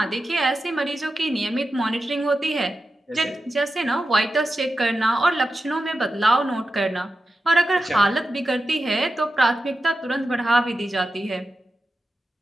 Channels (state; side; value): normal; both; correlation 0.91